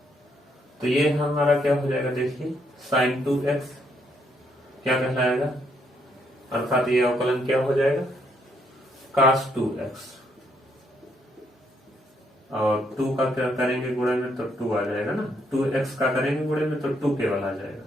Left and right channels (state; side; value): normal; both; correlation 0.73